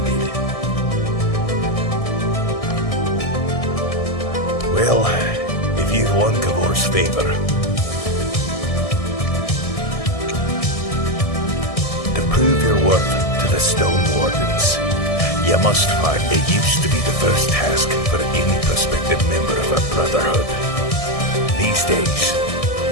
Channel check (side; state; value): right; late; 1.6 ms